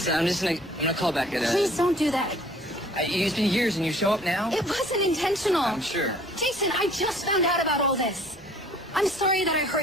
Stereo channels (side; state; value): both; normal; correlation 0.54